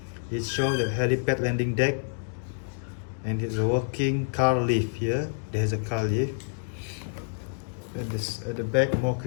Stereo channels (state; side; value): silent; right; digital silence